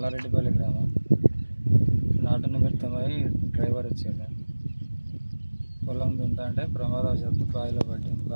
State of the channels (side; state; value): both; inverted; correlation -1.00